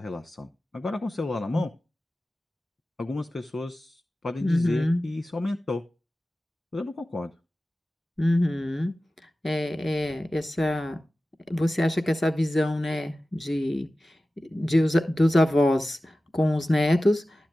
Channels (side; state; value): both; normal; correlation 0.95